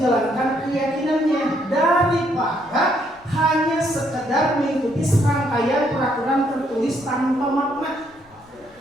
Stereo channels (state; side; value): noise; left; rumble, 29 dB below the sound